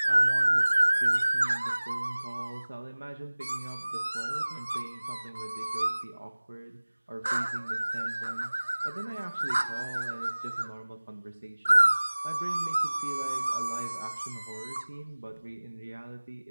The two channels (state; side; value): inverted; both; correlation -1.00